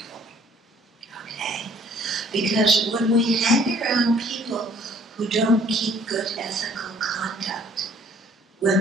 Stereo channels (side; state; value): both; normal; correlation 0.59